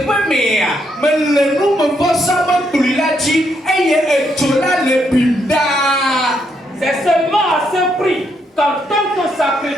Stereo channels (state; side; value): normal; both; correlation 0.76